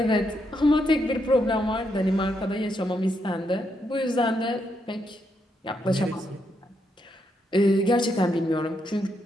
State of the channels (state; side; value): normal; both; correlation 0.79